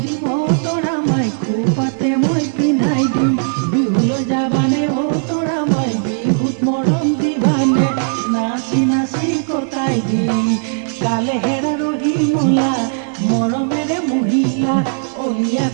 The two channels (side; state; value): left; silent; 68 dB below the other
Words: দিম অ তৰা মাই খোপাতে মই পিন্ধাই দিম বিহুলৈ যাবানে অ তৰা মাই বিহুত মৰম দিবানে নাচি নাচি কটাই দিম কালে হেৰা ৰহি মলা মৰমেৰে মহিলা অলিয়া